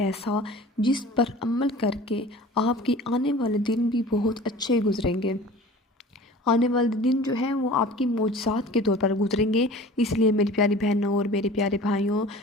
جس پر عمل کر کے آپ کے آنے والے دن بھی بہت اچھے گزریں گے۔ آنے والے دن جو ہیں وہ آپ کی معجزات کے طور پر گزریں گے۔ اس لیے میری پیاری بہنوں اور میرے پیارے بھائیوں،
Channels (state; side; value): normal; both; correlation 0.42